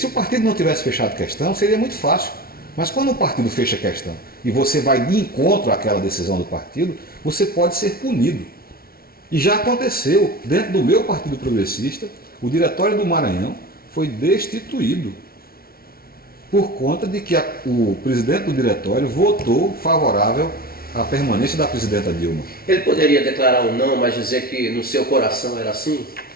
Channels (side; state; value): right; late; 0.44 ms